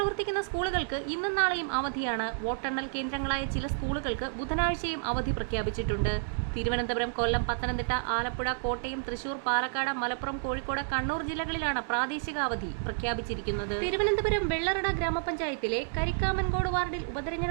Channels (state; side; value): silent; left; digital silence